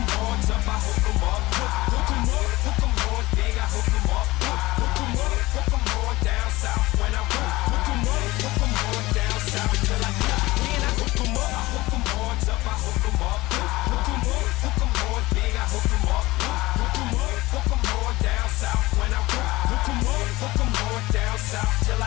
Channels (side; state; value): right; quieter; 20.0 dB